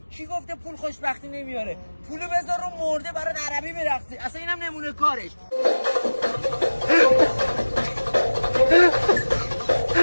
کی گفته پول خوشبختی نمیاره؟ پولو بذار رو مرده برات عربی برقصی. اصلا اینم نمونه کارش.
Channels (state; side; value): inverted; both; correlation -1.00